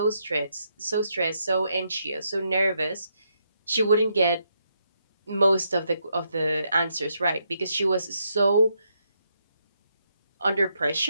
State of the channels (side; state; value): both; inverted; correlation -0.78